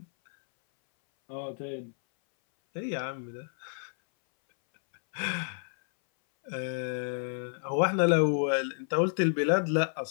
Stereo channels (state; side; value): silent; right; 58 dB below the other